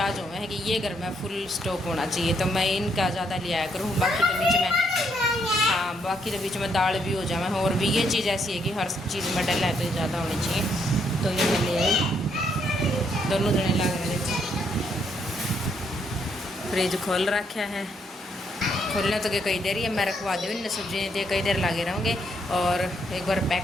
हो है कि ये घर में फुल स्टॉक होना चाहिए, तो मैं इनका ज़्यादा ले आया करूँ। बाकी तो बीच में हाँ बाकी तो बीच में दाल भी हो जाए, और भी ये चीज़ ऐसी है कि हर चीज़ में डल है तो ज़्यादा होनी चाहिए, तो ये मैं ले आई। दोनों जने लग रहे थे। फ्रिज खोल रखा है, खोलने तो कई देर ही मैं रखवा दूँ इन सब्जी तो कई देर लगे रहूँगे, और एक बार पैक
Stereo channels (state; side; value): normal; both; correlation 0.73